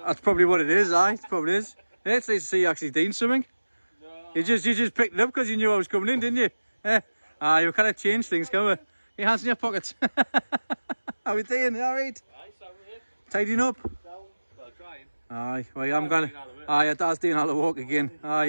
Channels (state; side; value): inverted; both; correlation -1.00